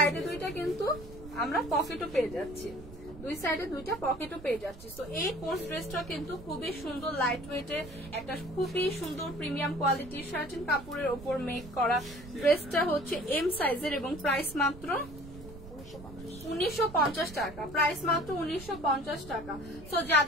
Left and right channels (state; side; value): noise; right; rumble, 15 dB below the sound